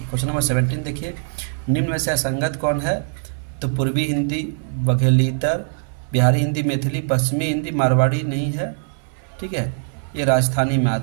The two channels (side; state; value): left; silent; 58 dB below the other